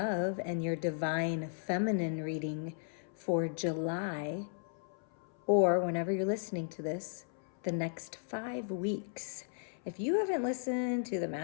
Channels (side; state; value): right; silent; 54 dB below the other